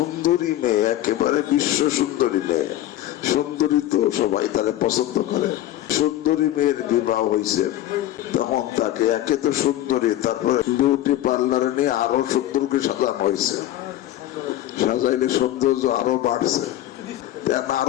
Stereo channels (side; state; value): right; quieter; 13.8 dB